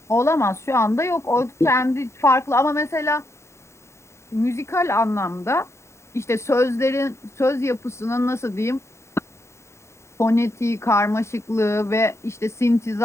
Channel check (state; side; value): late; right; 0.13 ms